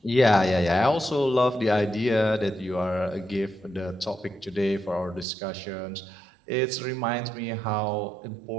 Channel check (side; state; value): left; drops out; at 5.2 s